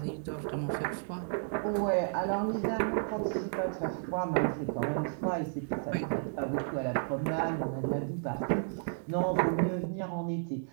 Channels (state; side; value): silent; left; digital silence